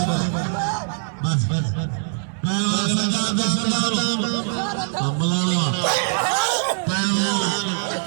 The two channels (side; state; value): left; silent; digital silence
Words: बस पहलवान सजा दे सलाम अमलावा पहलवान